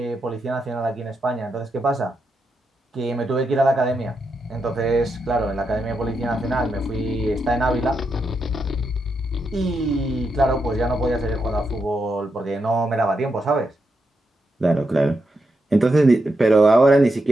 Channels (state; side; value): normal; both; correlation 0.84